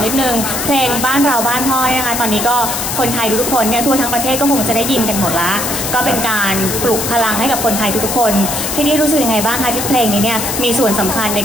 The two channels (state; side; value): noise; left; hiss, 3 dB below the sound